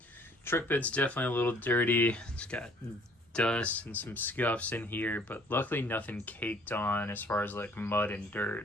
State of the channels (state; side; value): normal; both; correlation 0.58